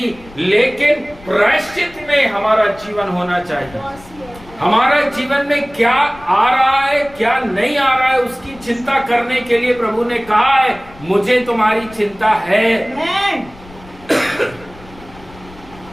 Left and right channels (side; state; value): left; noise; rumble, 21 dB below the sound